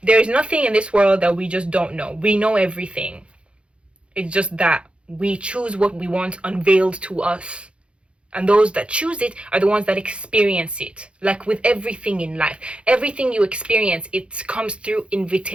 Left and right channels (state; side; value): late; left; 0.058 ms